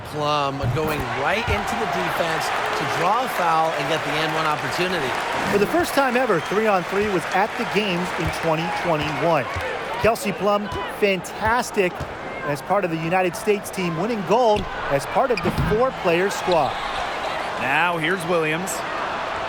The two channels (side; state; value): both; identical; correlation 1.00